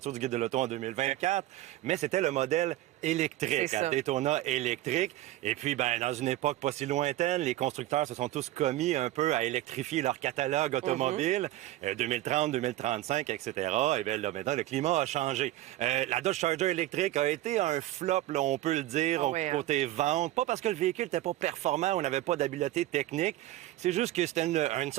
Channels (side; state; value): left; quieter; 15.4 dB